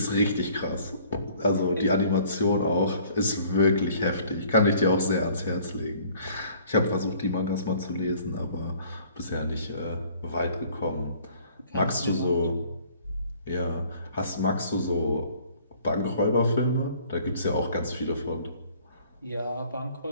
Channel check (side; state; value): both; inverted; correlation -0.56